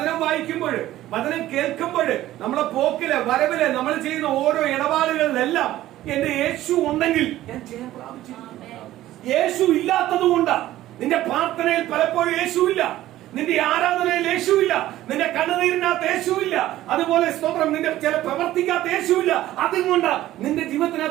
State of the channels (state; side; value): quieter; left; 14.6 dB